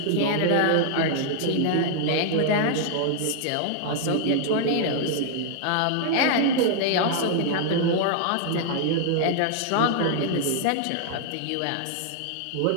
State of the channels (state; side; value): different; both; correlation 0.00